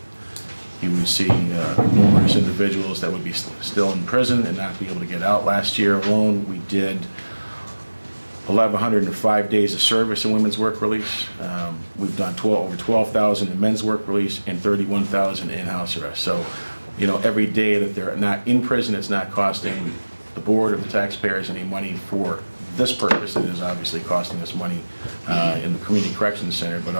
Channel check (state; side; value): inverted; both; correlation -1.00